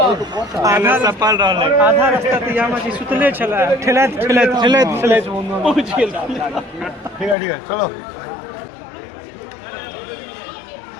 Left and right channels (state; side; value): drops out; right; at 7.4 s